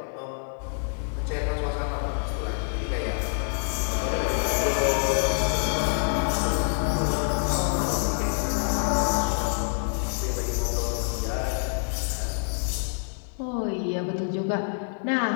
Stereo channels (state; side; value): silent; right; 59 dB below the other